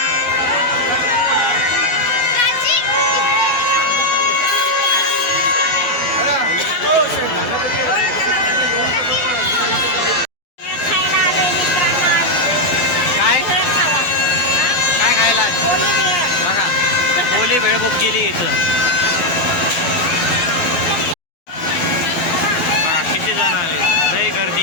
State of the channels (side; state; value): right; late; 12 ms